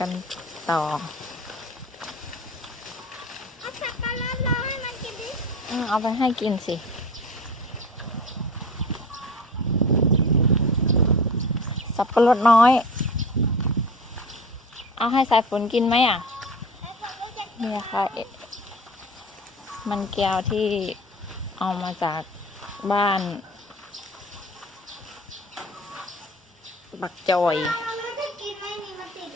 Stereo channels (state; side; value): normal; both; correlation 0.38